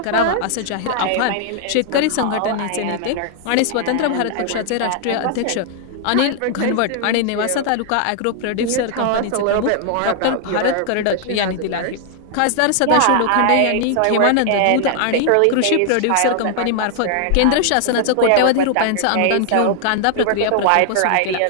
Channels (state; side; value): different; both; correlation 0.00